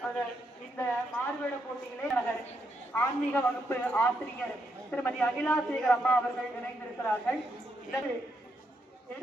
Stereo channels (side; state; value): both; normal; correlation 0.79